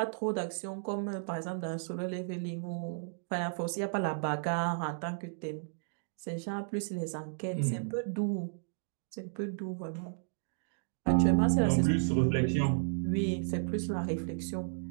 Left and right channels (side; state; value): left; silent; digital silence